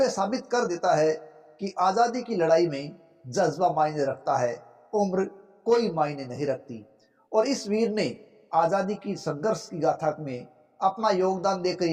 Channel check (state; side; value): identical; both; correlation 1.00